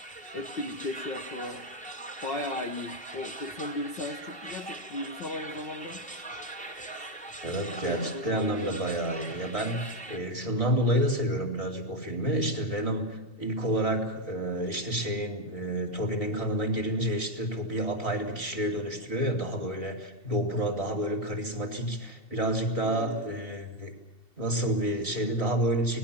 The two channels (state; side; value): late; right; 2.7 ms